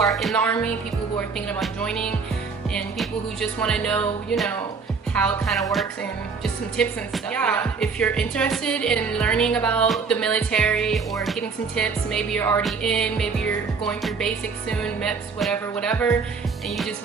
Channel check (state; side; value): quieter; left; 5.1 dB